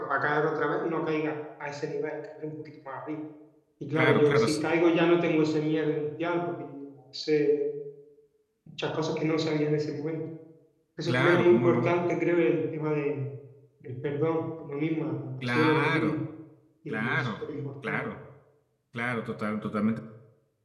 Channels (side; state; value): both; identical; correlation 1.00